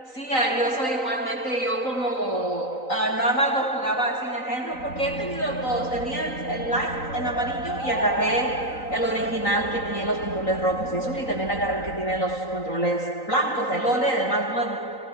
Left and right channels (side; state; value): right; late; 3.9 ms